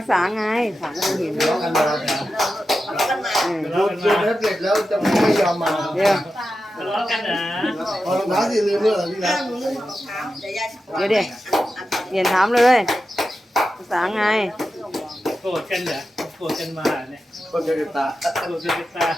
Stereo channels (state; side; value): normal; both; correlation 0.91